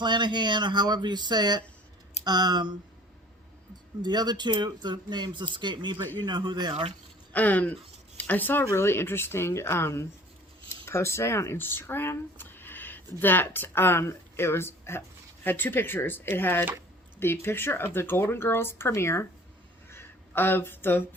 or however you say it. The other 2, the names escape me, but you know who they are. I saw a really interesting post today on Instagram that it was had 2 pictures. It had the picture of the Golden Girls premiere of the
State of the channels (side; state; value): both; normal; correlation 0.49